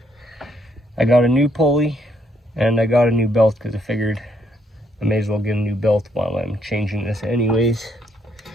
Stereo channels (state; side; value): normal; both; correlation 0.72